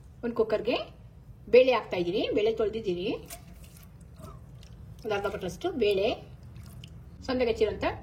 ಒಂದು ಕುಕ್ಕರ್ಗೆ ಬೇಳೆ ಹಾಕ್ತಾ ಇದ್ದೀನಿ. ಬೇಳೆ ತೊಳೆದಿದ್ದೀನಿ. ಒಂದು ಅರ್ಧ ಪಟ್ಟರಷ್ಟು ಬೇಳೆ, ಸಣ್ಣಗೆ ಹೆಚ್ಚಿರುವಂತ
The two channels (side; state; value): both; identical; correlation 1.00